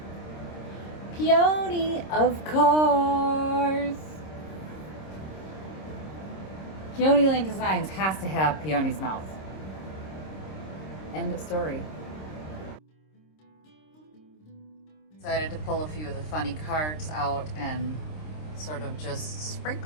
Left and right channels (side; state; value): right; late; 26 ms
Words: Peony, of course. Peony Lane Designs has to have Peony's mouth. End of story. Decided to pull a few of the funny cards out and sort of just